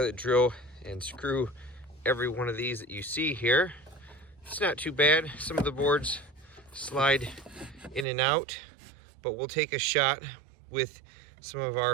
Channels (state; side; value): drops out; left; at 8.1 s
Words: drill and screw every one of these that you see here. It's not too bad. Some of the boards slide in and out, but we'll take a shot with some of